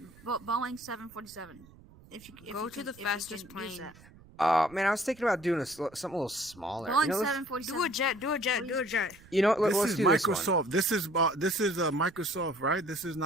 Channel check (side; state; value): right; noise; rumble, 23 dB below the sound